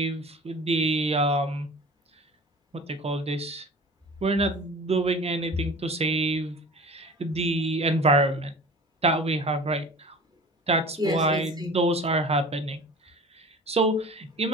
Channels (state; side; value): normal; both; correlation 0.40